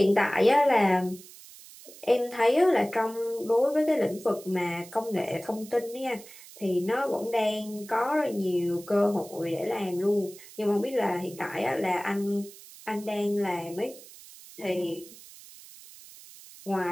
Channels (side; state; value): right; noise; hiss, 19 dB below the sound